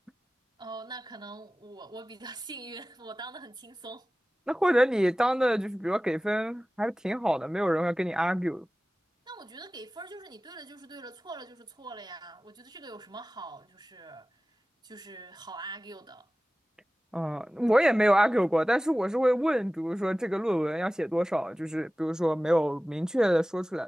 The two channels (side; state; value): both; normal; correlation 0.97